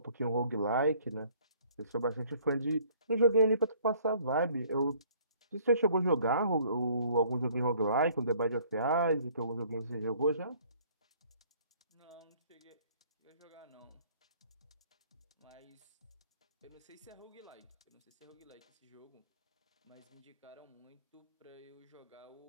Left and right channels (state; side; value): inverted; both; correlation -0.58